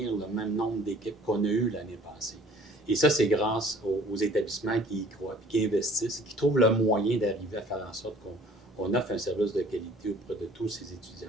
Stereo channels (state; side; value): normal; both; correlation 0.53